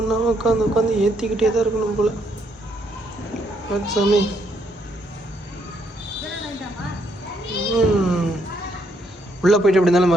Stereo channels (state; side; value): normal; both; correlation 0.73